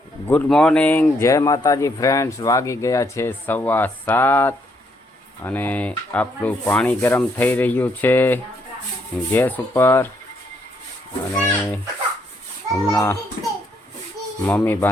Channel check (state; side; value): normal; both; correlation 0.72